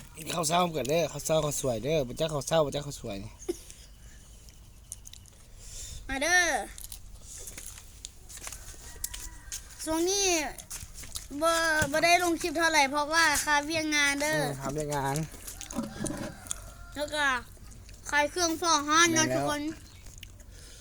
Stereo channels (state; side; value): identical; both; correlation 1.00